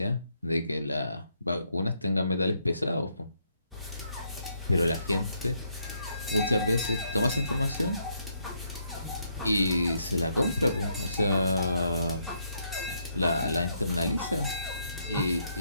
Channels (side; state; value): both; inverted; correlation -0.74